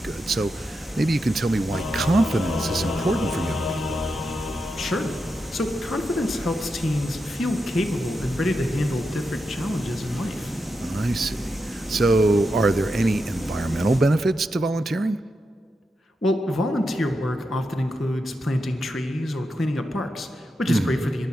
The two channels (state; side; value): normal; both; correlation 0.87